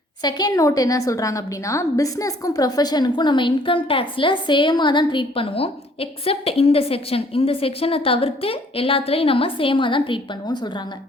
செகண்ட் நோட் என்ன சொல்றாங்க அப்டின்னா, பிசினஸ்க்கும் ப்ரொஃபஷனுக்கும் நம்ம இன்கம் டாக்ஸ்ல சேமா தான் ட்ரீட் பண்ணுவோம். எக்ஸெப்ட் இந்த செக்ஷன். இந்த செக்ஷன தவிர்த்து எல்லாத்துலயும் நம்ம சேமா தான் ட்ரீட் பண்ணுவோம்னு சொல்றாங்க.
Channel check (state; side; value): normal; both; correlation 0.60